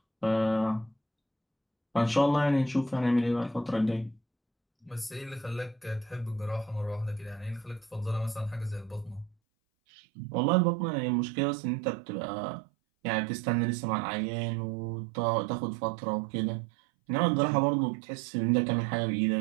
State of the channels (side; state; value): left; drops out; at 9.3 s